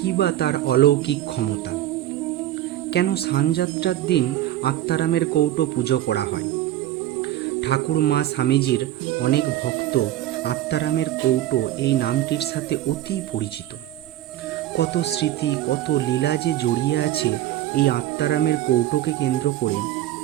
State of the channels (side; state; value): left; quieter; 13.4 dB